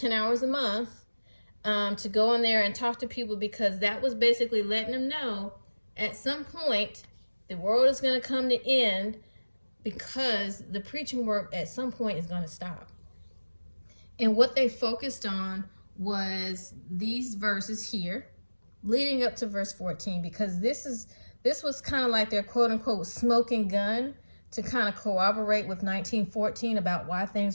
hours a month to go in there and talk to people, because that was basically letting them know at some point the world is going to come to end, because the preaching work at some point is going to stop. And what they focused on was these verses here leading up to verse 14, because this was kind of like their quote unquote smoking gun to kind of corroborate with 1914 about why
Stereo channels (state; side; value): inverted; both; correlation -1.00